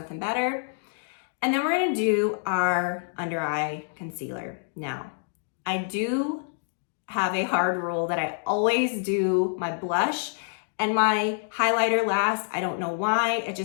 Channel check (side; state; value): right; silent; digital silence